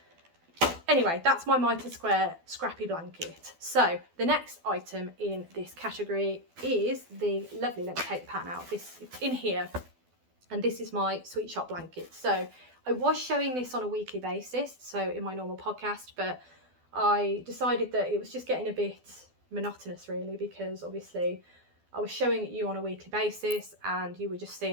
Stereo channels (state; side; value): late; left; 12 ms